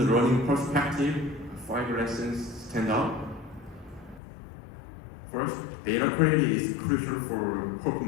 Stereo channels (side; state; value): right; drops out; at 4.2 s